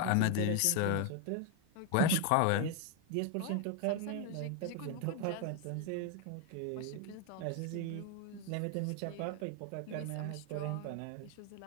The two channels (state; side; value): different; both; correlation 0.01